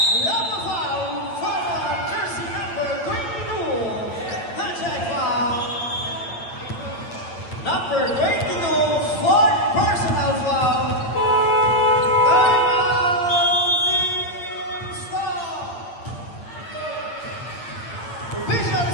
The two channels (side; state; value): right; late; 8.7 ms